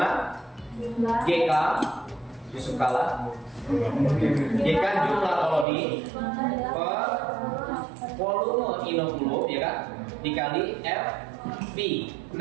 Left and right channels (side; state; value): left; drops out; at 5.7 s